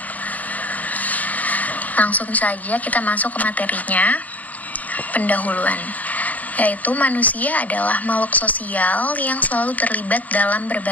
Langsung saja kita masuk ke materinya. Pendahuluan, yaitu manusia adalah makhluk sosial yang selalu terlibat dalam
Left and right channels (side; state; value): right; late; 0.077 ms